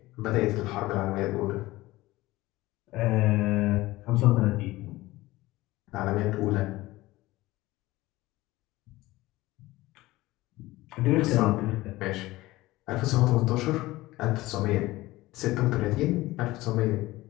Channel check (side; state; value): right; quieter; 18.5 dB